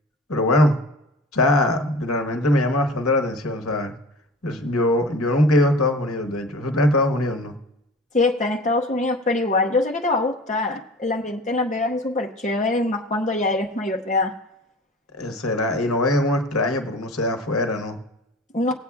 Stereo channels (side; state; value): both; normal; correlation 0.40